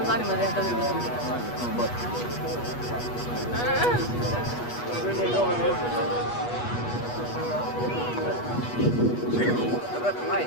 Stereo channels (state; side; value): late; right; 8.3 ms